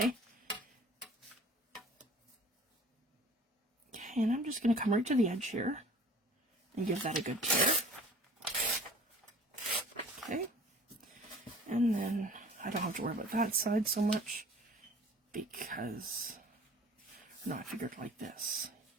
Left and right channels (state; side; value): normal; both; correlation 0.47